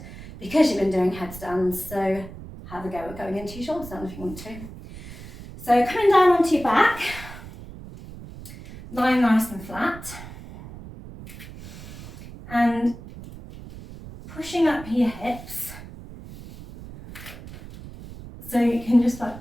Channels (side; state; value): right; noise; rumble, 14 dB below the sound